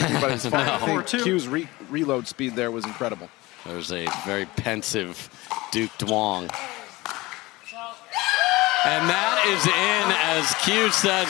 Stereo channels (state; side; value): quieter; right; 20.9 dB